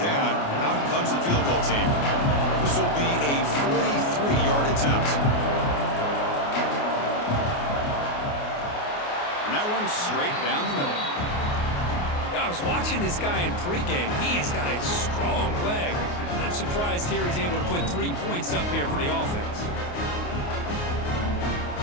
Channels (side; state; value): right; late; 28 ms